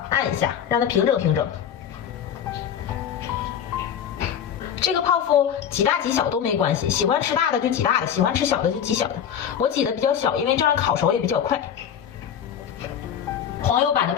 按一下，让它平整平整。这个泡芙挤大挤小都没关系，喜欢吃大的就挤大的，喜欢吃小的就挤小的。我挤的比较小，因为这样烤熟也比较快。黄油版的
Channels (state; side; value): quieter; right; 8.8 dB